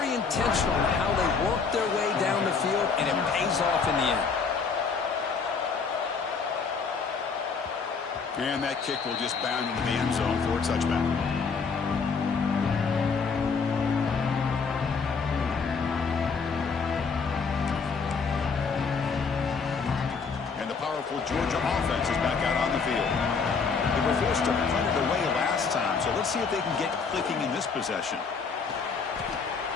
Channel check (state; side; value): quieter; right; 5.2 dB